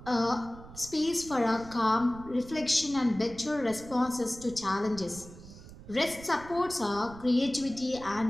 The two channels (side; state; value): right; noise; rumble, 17 dB below the sound